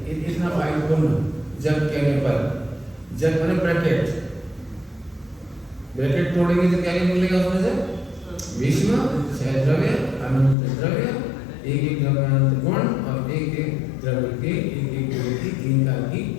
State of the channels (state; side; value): drops out; right; at 10.6 s